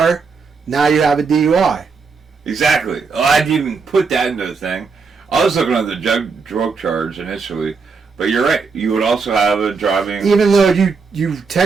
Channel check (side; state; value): left; quieter; 4.9 dB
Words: now you have a DUI. Exactly. Oh, I didn't even put that into the thing. I was looking at the drug charge initially, But you're right. You would also have a driving... Even though you